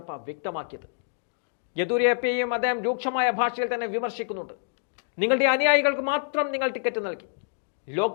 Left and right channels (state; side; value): silent; right; digital silence